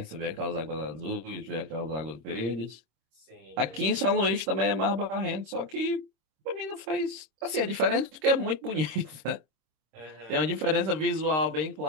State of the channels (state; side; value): late; left; 26 ms